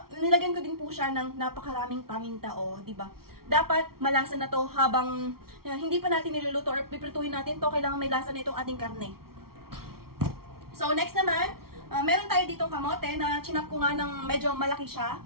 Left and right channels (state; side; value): late; left; 0.94 ms